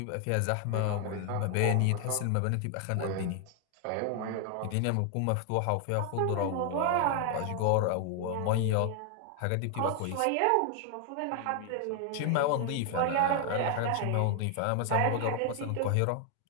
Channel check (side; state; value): both; different; correlation 0.00